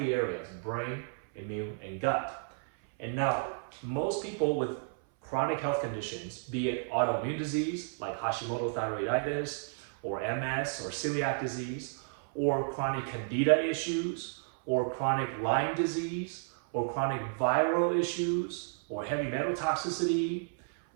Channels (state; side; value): silent; left; 56 dB below the other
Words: areas, brain, immune, and gut. And now, most people with chronic health conditions, be it autoimmune disease like Hashimoto thyroiditis, or MS, or celiac disease, or chronic candida issues, or chronic Lyme disease, or chronic viral issues, or heavy metal toxicity,